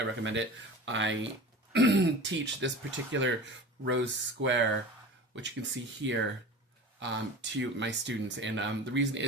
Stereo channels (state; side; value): normal; both; correlation 0.35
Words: recommend it. I teach this particular rose square, which you can see here, to my students, and the reason